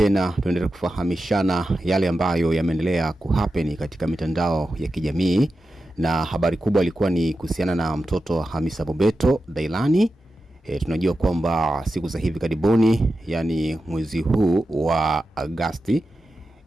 tuendelee kufahamishana yale ambayo yameendelea kuhappen katika mitandao ya kijamii, na habari kubwa ilikuwa ni kuhusiana na mtoto Hamisa Mobeto Dailani. Tunajua kwamba siku za hivi karibuni, yani mwezi huu wa Agosti,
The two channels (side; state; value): both; normal; correlation 0.91